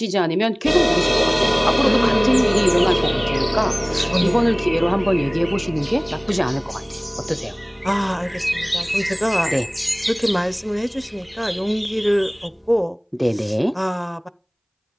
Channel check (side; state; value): both; identical; correlation 1.00